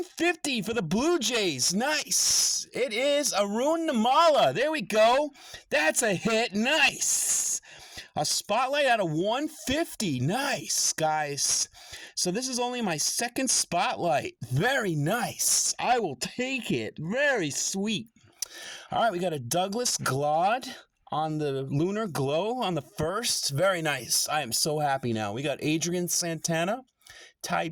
for the Blue Jays. Nice. It is Arun Namala. There we go. That's a hit. Nice. A spotlight out of 150. Nice, guys. So this is only my 2nd spotlight. Very nice. I will take it. Very sweet. All right, we got a Douglas Glad on the Lunar Glow on the 1st. Very nice. I am so happy now. We got Adrian Santana, Ty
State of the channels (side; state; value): both; identical; correlation 1.00